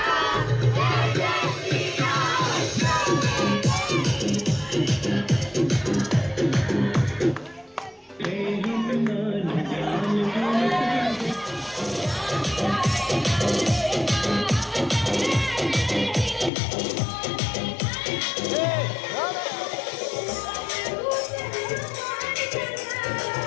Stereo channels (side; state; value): right; drops out; at 16.5 s